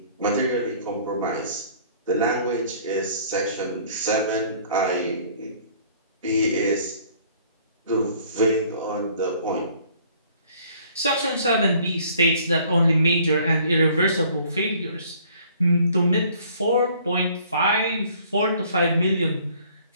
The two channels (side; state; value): both; inverted; correlation -0.56